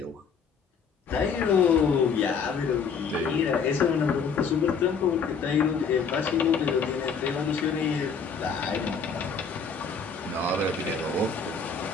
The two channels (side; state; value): right; quieter; 5.7 dB